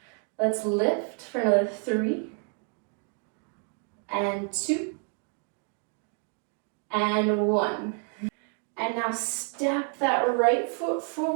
Let's lift for another 3 and 2 and 1. And now step that right foot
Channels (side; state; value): left; quieter; 38.3 dB